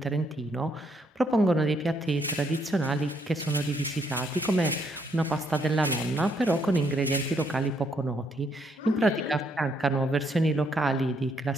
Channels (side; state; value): both; normal; correlation 0.72